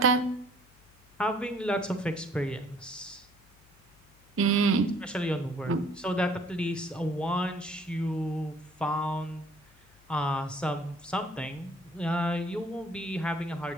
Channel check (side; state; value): left; noise; hum, 29 dB below the sound